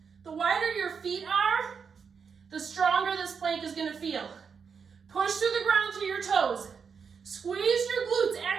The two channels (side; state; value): left; quieter; 6.2 dB